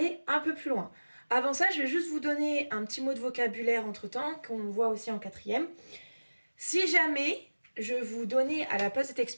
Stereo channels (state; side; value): inverted; both; correlation -1.00